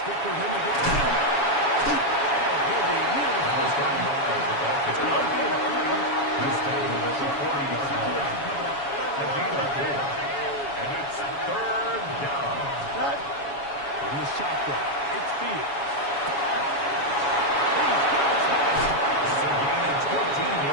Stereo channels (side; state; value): right; late; 7.1 ms